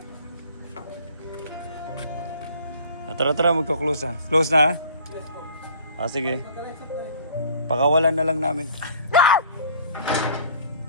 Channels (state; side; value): inverted; both; correlation -0.50